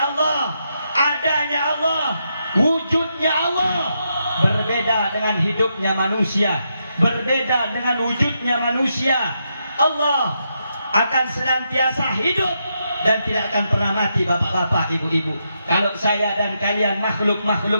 Allah, adanya Allah, wujudnya Allah berbeda dengan hidupnya manusia, berbeda dengan wujudnya manusia. Allah akan senantiasa hidup dan tidak akan pernah mati, bapak-bapak, ibu-ibu. Kalau saya dan kalian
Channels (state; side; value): inverted; both; correlation -0.82